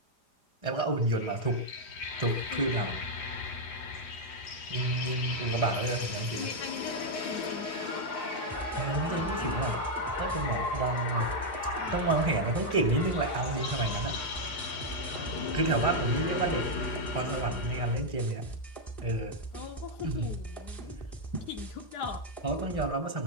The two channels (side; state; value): right; late; 4.9 ms